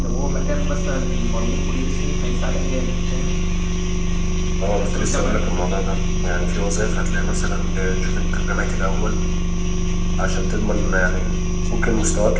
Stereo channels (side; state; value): both; identical; correlation 1.00